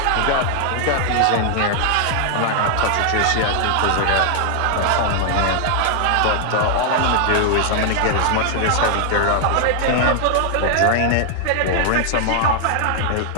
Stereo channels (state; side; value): different; both; correlation -0.01